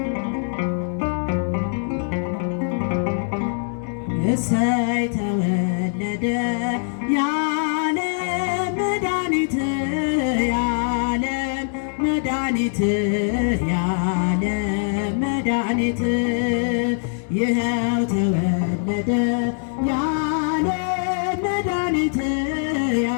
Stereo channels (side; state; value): right; silent; digital silence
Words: እሰይ ተወለደ የዓለም መድኃኒት የዓለም መድኃኒት የዓለም መድኃኒት ይኸው ተወለደ የዓለም መድኃኒት